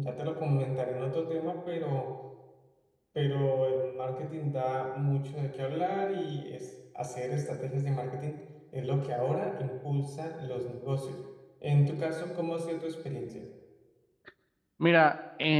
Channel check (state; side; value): identical; both; correlation 1.00